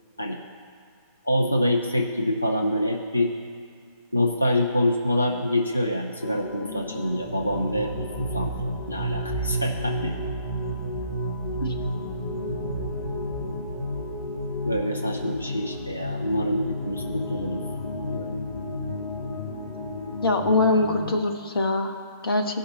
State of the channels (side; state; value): both; inverted; correlation -0.71